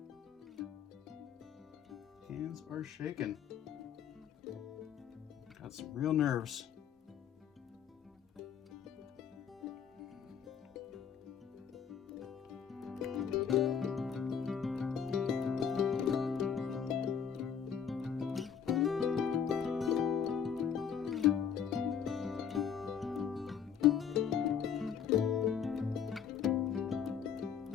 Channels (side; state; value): right; quieter; 7.6 dB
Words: Hands are shaking. Got some real nerves.